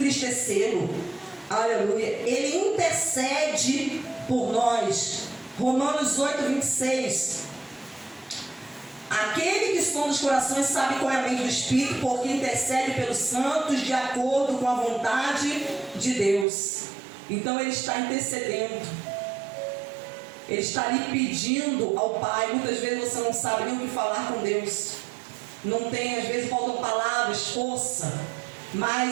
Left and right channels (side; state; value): left; drops out; at 16.4 s